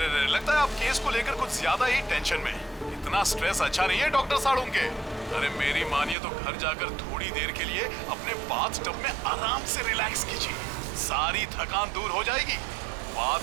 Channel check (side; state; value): left; drops out; at 6.2 s